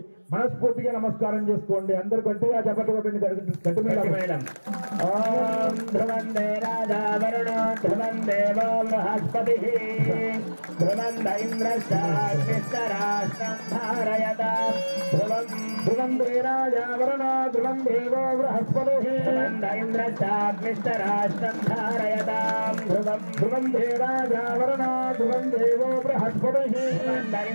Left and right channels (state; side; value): inverted; both; correlation -1.00